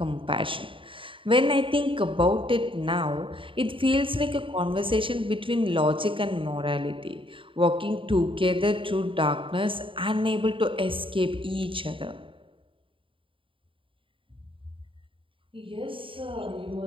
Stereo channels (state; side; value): late; left; 0.25 ms